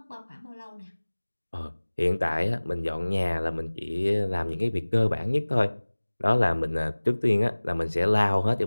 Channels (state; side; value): inverted; both; correlation -1.00